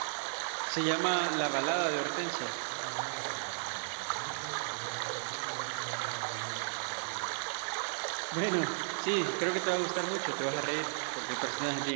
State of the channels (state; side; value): silent; left; digital silence